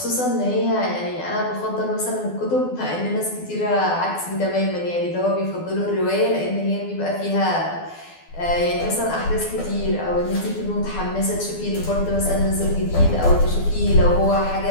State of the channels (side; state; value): right; late; 12 ms